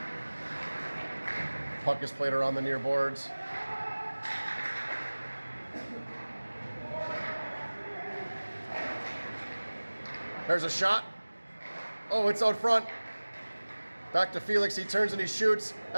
Puck is played around the near boards. There's a shot. Oh, it's out front. Back to Felix. He turns and he shoots.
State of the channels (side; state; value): both; inverted; correlation -1.00